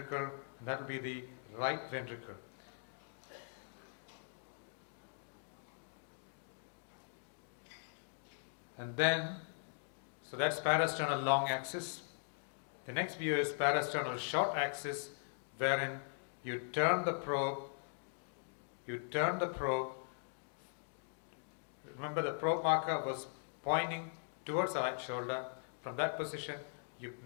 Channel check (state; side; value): silent; right; digital silence